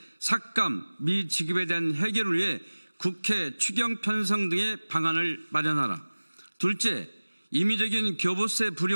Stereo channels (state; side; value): inverted; both; correlation -1.00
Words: 삭감 미지급에 대한 해결을 위해 국회 추경 편성 등의 방안을 마련하라. 둘째, 임의적인 교부세